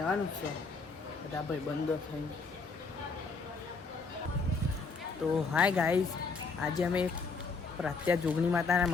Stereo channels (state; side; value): quieter; right; 4.4 dB